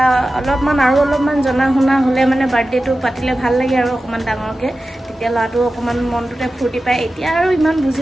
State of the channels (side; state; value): both; normal; correlation 0.94